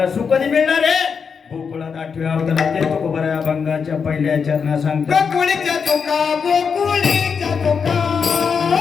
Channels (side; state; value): right; quieter; 6.0 dB